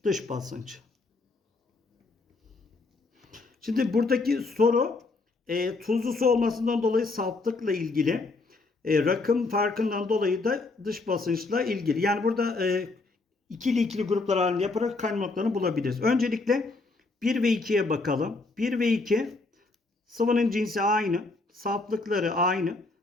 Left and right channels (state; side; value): quieter; right; 3.5 dB